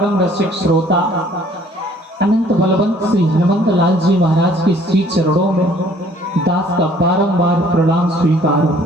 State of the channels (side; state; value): both; normal; correlation 0.58